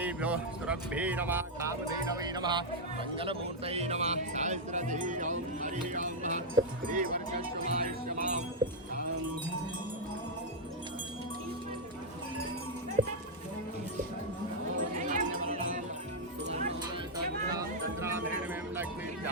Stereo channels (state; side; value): normal; both; correlation -0.03